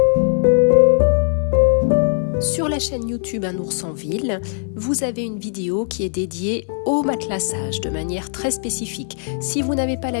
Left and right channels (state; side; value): silent; right; 66 dB below the other